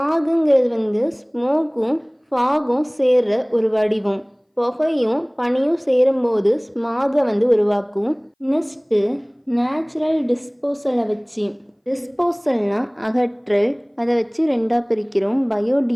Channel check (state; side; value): identical; both; correlation 1.00